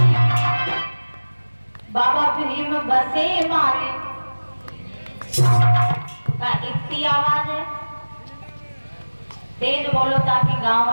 बाबा भीम बसे मारे। का इतनी आवाज है, तेज बोलो ताकि गांव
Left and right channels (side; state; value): both; inverted; correlation -1.00